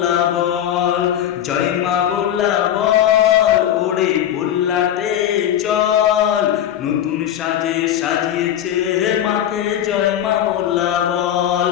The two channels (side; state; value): right; quieter; 10.7 dB